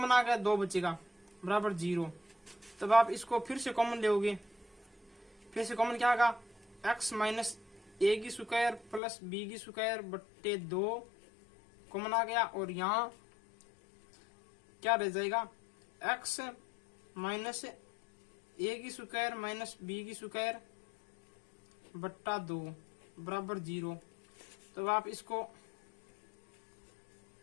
आ गया 2 बचेगा बराबर 0। तब आप इसको फिर से कॉमन लोगे, फिर से कॉमन क्या आएगा, x माइनस ए की स्क्वायर प्लस बी की स्क्वायर बट्टे 2 कॉमन आ गया और यहाँ क्या रह जाएगा, x माइनस ए की स्क्वायर माइनस बी की स्क्वायर बट्टा 2 बराबर 0। तो आप इसको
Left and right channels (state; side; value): drops out; right; at 9.0 s